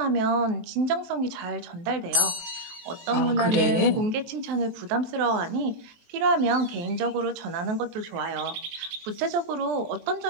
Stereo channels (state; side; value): late; left; 23 ms